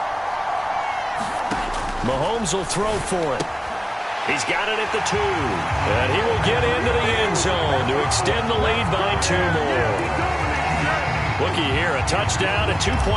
Mahomes will throw for it. He's got it at the 2. And he will get into the end zone to extend the lead by 2 more. Looky here, a touchdown, a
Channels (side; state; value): both; identical; correlation 1.00